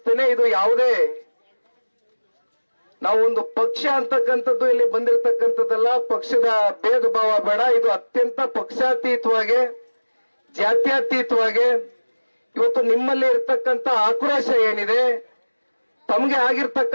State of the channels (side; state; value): both; inverted; correlation -1.00